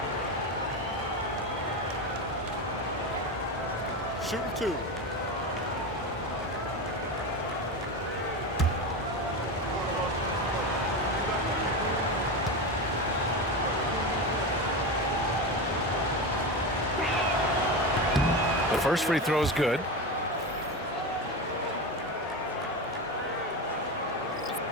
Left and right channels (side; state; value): both; normal; correlation 0.20